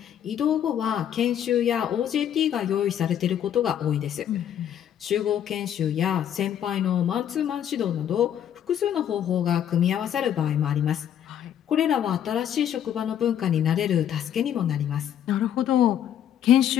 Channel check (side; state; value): right; quieter; 10.0 dB